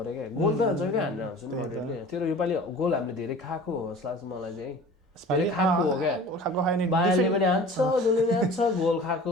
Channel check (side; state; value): both; normal; correlation 0.42